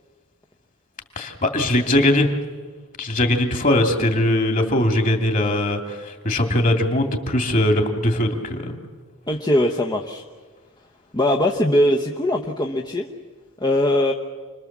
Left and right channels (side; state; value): both; normal; correlation 0.61